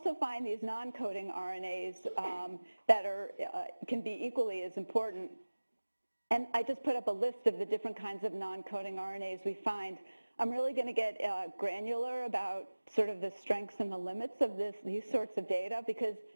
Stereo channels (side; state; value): both; inverted; correlation -1.00